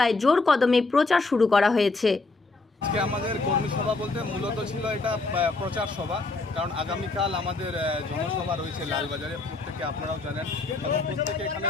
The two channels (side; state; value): right; quieter; 3.5 dB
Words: জোর কদমে প্রচার শুরু করা হয়েছে। আজকে আমাদের কর্মী সভা বলতে মূলত ছিল এটা প্রচার সভা, কারণ আগামীকাল আমাদের জনসভা রয়েছে লালবাজারে। প্রত্যেকে আপনারাও জানেন এবং প্রত্যেকে এখানে